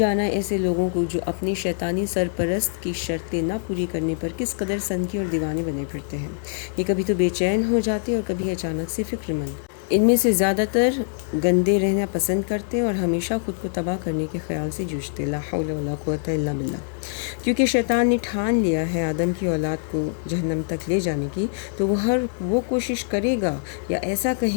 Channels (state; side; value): silent; right; 63 dB below the other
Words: ایسے لوگوں کو جو اپنی شیطانی سرپرست کی شرطیں نہ پوری کرنے پر کس قدر سنکی اور دیوانے بنے پھرتے ہیں۔ یہ کبھی تو بے چین ہو جاتے اور کبھی اچانک سے فکر مند۔ ان میں سے زیادہ تر گندے رہنا پسند کرتے اور ہمیشہ خود کو تباہ کرنے کے خیال سے جوجھتے، لا حول ولا قوت الا باللہ۔ کیونکہ شیطان نے ٹھان لیا ہے آدم کی اولاد کو جہنم تک لے جانے کی، تو وہ کوشش کرے گا، یا ایسا